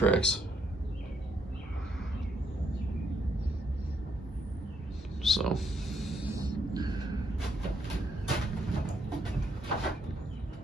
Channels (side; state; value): both; normal; correlation 0.73